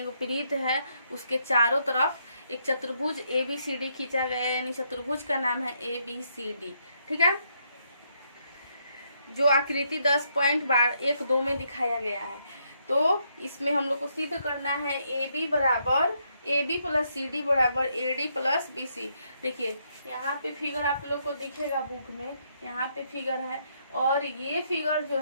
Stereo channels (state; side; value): inverted; both; correlation -0.75